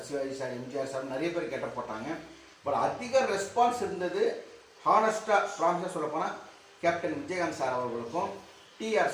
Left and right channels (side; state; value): both; identical; correlation 1.00